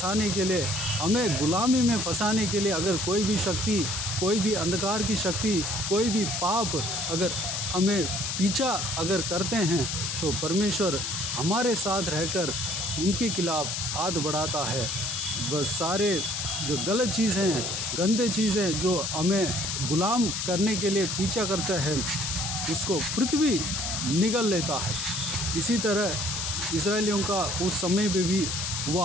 के लिए, हमें गुलामी में फंसाने के लिए अगर कोई भी शक्ति, कोई भी अंधकार की शक्ति, कोई भी पाप अगर हमें पीछा अगर करते हैं, तो परमेश्वर हमारे साथ रहकर उनके खिलाफ हाथ बढ़ाता है। बस सारे जो गलत चीज़ हैं, गंदे चीज़ें जो हमें गुलाम करने के लिए पीछा करते हैं, उसको पृथ्वी निगल लेता है। इसी तरह इस्राएलियों का उस समय पे भी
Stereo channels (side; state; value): left; noise; hiss, 2 dB below the sound